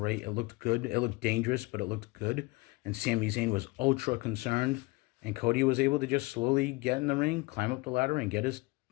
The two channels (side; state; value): right; quieter; 24.0 dB